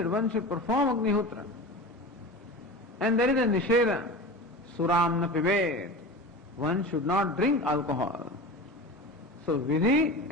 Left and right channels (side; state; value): both; normal; correlation 0.31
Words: one should perform Agnihotra. And there is a Nisheda, Suramna Pivet. One should not drink alcohol. So Vidhi